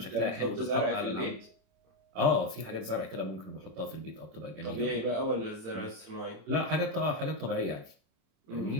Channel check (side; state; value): left; late; 26 ms